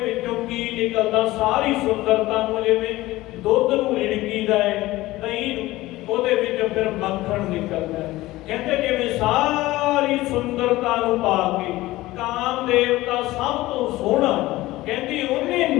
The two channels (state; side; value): quieter; right; 17.9 dB